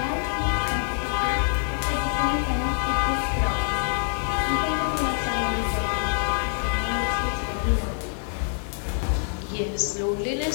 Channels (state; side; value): silent; right; 58 dB below the other